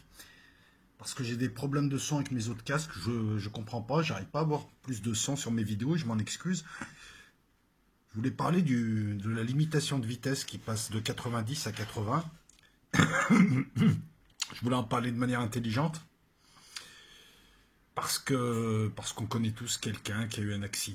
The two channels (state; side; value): identical; both; correlation 1.00